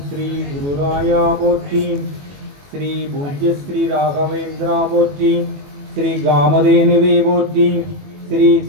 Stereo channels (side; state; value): left; late; 21 ms